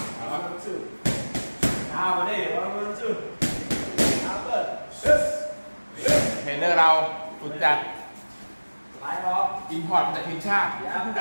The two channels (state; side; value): inverted; both; correlation -1.00